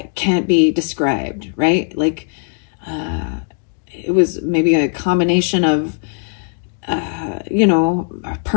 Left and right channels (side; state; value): right; quieter; 39.8 dB